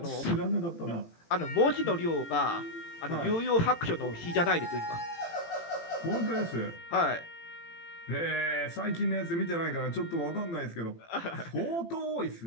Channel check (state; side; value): late; right; 18 ms